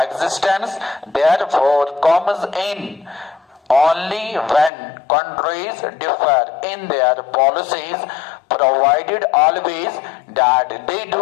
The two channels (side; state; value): right; drops out; at 4.7 s